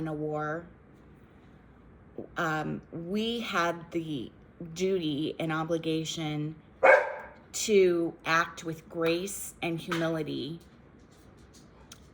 a war. We had the duty and obligation to act with grace and humility,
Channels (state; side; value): identical; both; correlation 1.00